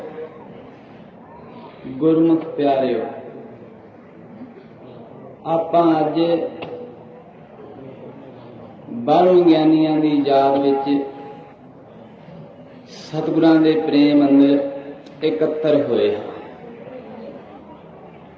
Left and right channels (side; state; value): both; identical; correlation 1.00